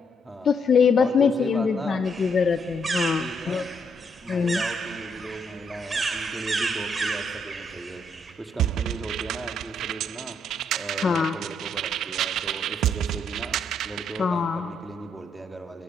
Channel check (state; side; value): normal; both; correlation 0.74